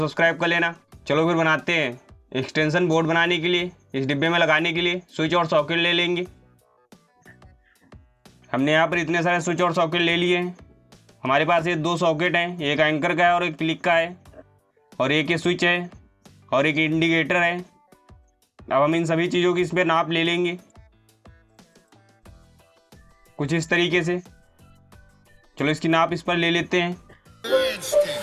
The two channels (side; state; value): both; identical; correlation 1.00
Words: कर लेना। चलो फिर बनाते हैं। एक्सटेंशन बोर्ड बनाने के लिए इस डिब्बे में लगाने के लिए स्विच और सॉकेट ले लेंगे। हमने यहाँ पर इतने सारे स्विच और सॉकेट ले लिए हैं। हमारे पास ये दो सॉकेट हैं, एक एंकर का है और एक क्लिक का है, और एक ये स्विच है और एक इंडिकेटर है। अब हम इन सभी चीज़ों की इस पर नाप ले लेंगे कुछ इस तरीके से। चलो इसकी नाप इस पर ले लेते हैं।